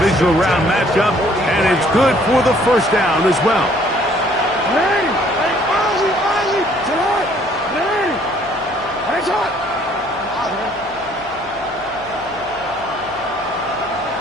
round matchup, and it's good for the 1st down as well.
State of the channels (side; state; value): left; noise; hum, 23 dB below the sound